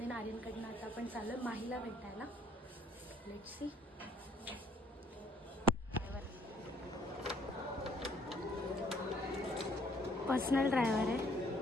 देन आर्यनकडनं आता आपण चाललो माहीला भेटायला. Let's see. पर्सनल ड्रायव्हर आहे,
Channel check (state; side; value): normal; both; correlation 0.62